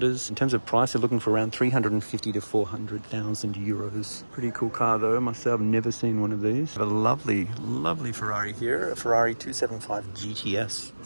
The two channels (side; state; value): both; inverted; correlation -1.00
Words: In terms of price, they're looking for around 350 to 400,000 euros. Pretty cool car though. I must say I've never seen one of these. Have a lovely, lovely Ferrari here. A Ferrari 275 GTS.